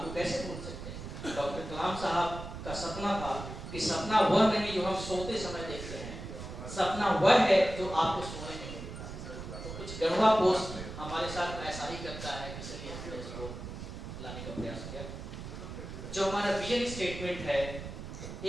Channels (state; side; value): noise; right; rumble, 9 dB below the sound